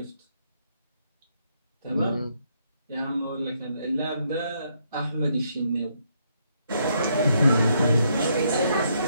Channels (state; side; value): inverted; both; correlation -0.74